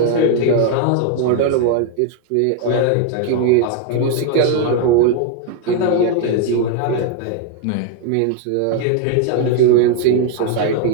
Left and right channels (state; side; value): different; both; correlation 0.00